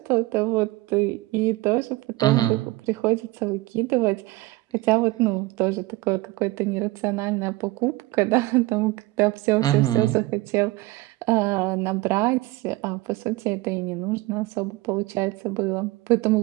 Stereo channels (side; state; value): left; quieter; 20.3 dB